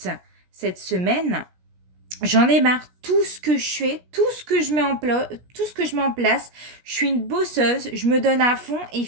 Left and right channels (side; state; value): left; late; 17 ms